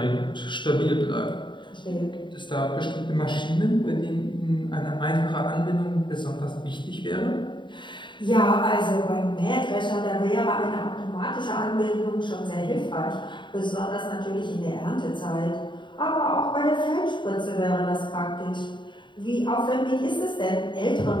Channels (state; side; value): late; right; 0.23 ms